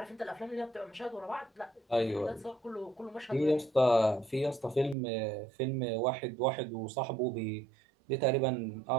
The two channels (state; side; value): drops out; left; at 5.0 s